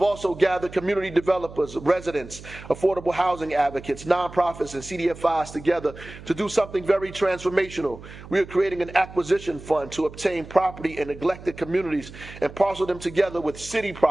also gathered community developers, residents, affordable housing advocates, nonprofits, and CDFIs together to do something very transformational. We are creating an acquisition fund to obtain property in neglected communities and parcel them together with city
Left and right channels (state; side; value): noise; right; hum, 16 dB below the sound